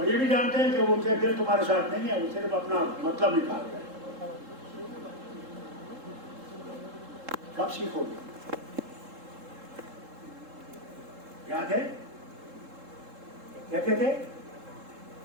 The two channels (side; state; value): left; late; 3.7 ms